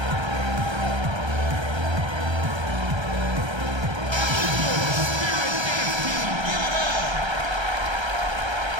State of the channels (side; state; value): left; late; 1.3 ms